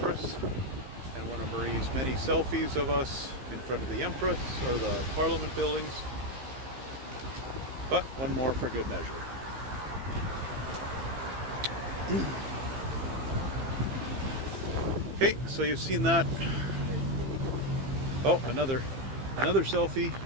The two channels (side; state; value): left; late; 15 ms